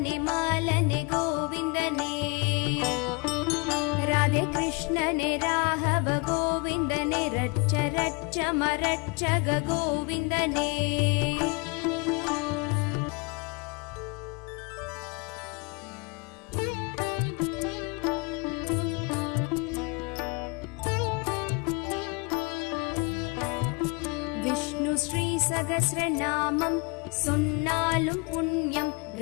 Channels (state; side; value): quieter; right; 30.2 dB